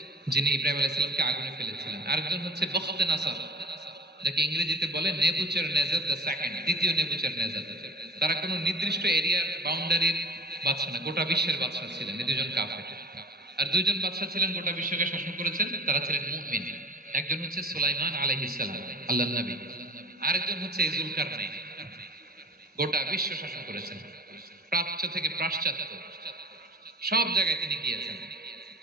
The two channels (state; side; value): normal; both; correlation 0.39